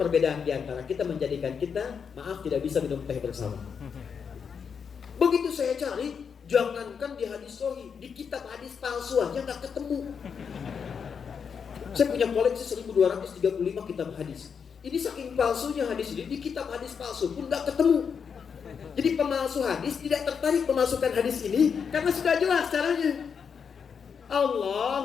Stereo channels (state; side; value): quieter; right; 6.5 dB